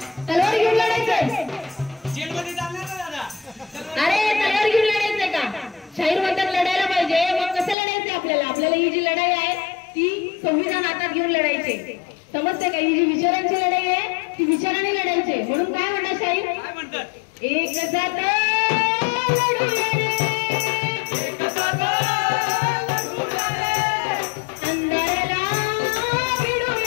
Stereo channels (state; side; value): drops out; right; at 7.8 s